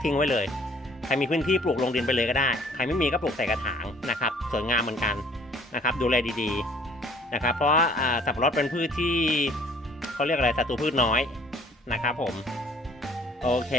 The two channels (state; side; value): normal; both; correlation 0.56